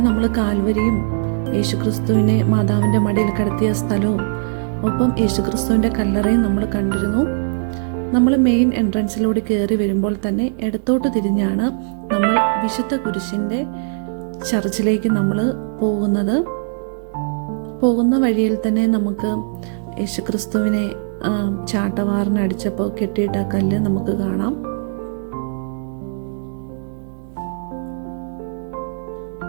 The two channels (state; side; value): silent; left; digital silence